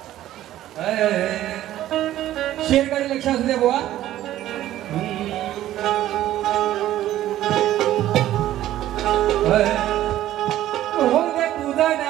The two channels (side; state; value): left; quieter; 13.5 dB